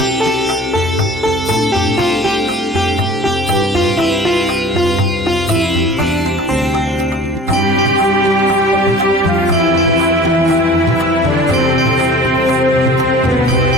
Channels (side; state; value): both; normal; correlation 0.45